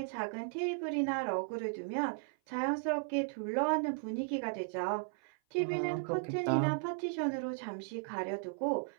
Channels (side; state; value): left; silent; 54 dB below the other